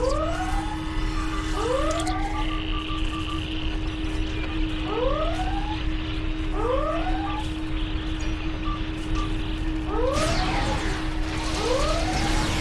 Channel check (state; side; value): identical; both; correlation 1.00